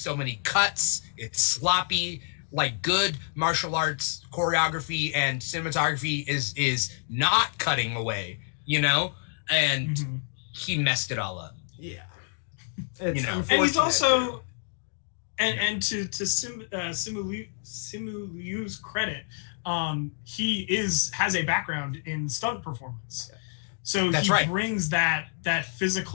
many cuts. It's sloppy. Like, good martial arts choreography and cinematography is not cutting away, you know? And he messed it all up. Yeah. And he's also, and to Simu Liu's credit, he has a background in stunt performance. So he brings that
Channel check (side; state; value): right; silent; digital silence